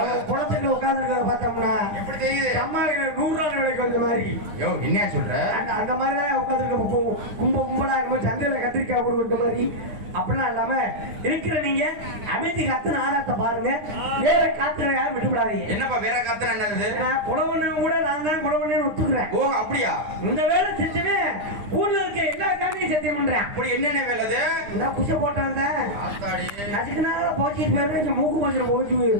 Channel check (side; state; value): left; late; 9.5 ms